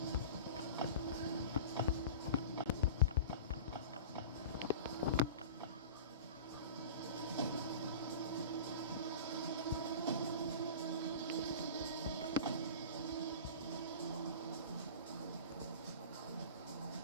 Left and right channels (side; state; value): both; inverted; correlation -0.35